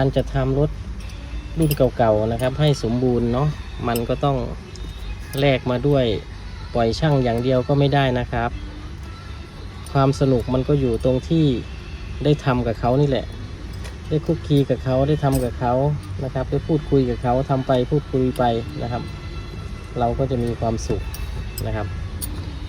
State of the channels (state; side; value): identical; both; correlation 1.00